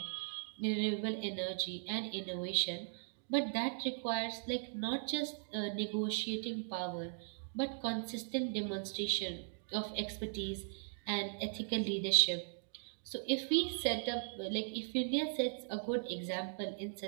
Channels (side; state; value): left; silent; digital silence